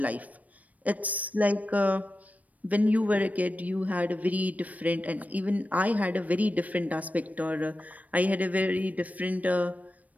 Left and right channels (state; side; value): late; left; 0.072 ms